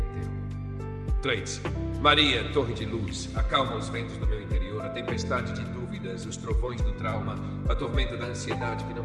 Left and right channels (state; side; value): identical; both; correlation 1.00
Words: 3. Maria, torre de luz, acalma os ventos do meu interior, a tempestade de dúvidas, os trovões do trauma, a tormenta da ansiedade que não